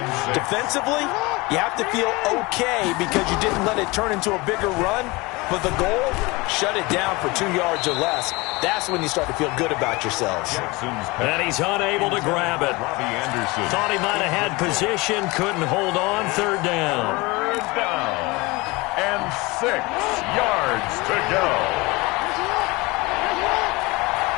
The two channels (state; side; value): quieter; right; 24.0 dB